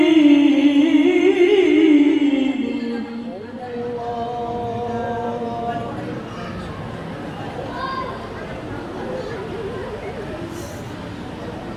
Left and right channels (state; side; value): identical; both; correlation 1.00